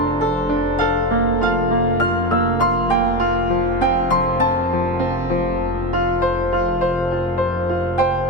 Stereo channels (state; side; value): normal; both; correlation 0.18